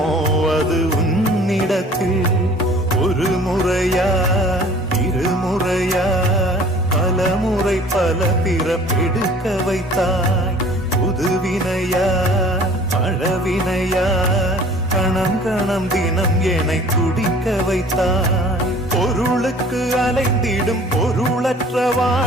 அது உன்னிடத்தில் ஒரு முறையா இருமுறையா பலமுறை பல பிறப்பெடுக்க வைத்தாய் புதுவினையா பழவினையா கணம் கணம் தினம் என்னை துடிக்க வைத்தாய் பொருளுக்கு அலைந்திடும் பொருளற்ற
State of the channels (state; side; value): normal; both; correlation 0.50